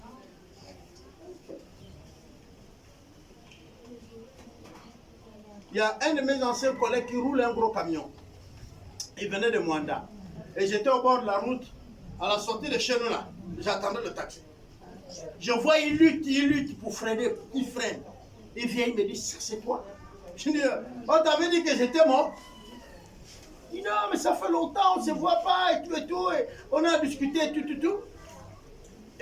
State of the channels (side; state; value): both; identical; correlation 1.00